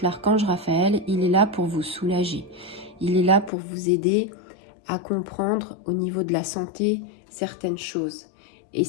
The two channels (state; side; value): drops out; right; at 3.5 s